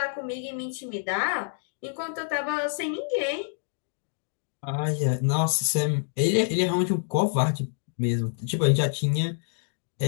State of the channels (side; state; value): right; silent; digital silence